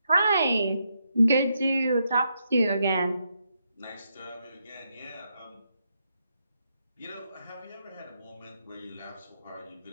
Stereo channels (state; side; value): inverted; both; correlation -0.80